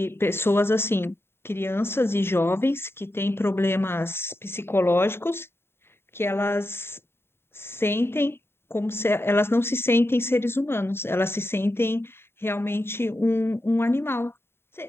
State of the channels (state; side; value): late; right; 0.11 ms